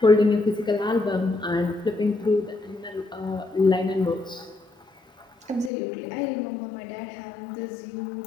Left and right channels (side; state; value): right; drops out; at 5.7 s